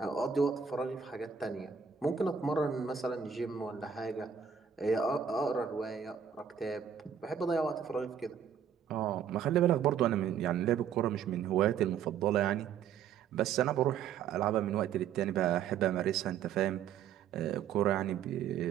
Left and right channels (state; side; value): quieter; left; 7.8 dB